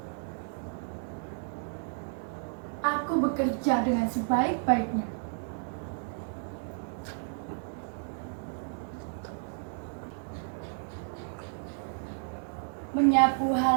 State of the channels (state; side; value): silent; left; digital silence